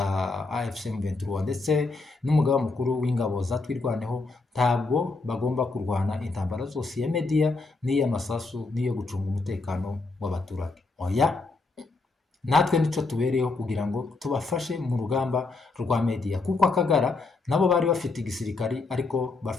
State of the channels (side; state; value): right; quieter; 3.7 dB